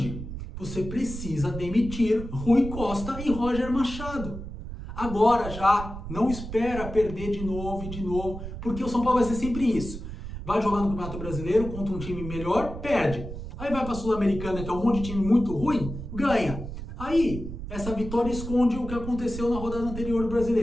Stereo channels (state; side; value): noise; right; rumble, 9 dB below the sound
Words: Você precisa demitir Rui Costa e Roger Machado. Agora já, não espera perder de novo, porque o São Paulo vai ser sempre isso. Vai jogar no Campeonato Brasileiro contra um time melhor, perde. Aí vai para a Sul-Americana, que é um monte de time muito ruim, ganha. Aí, essa vitória esconde o que aconteceu na rodada anterior do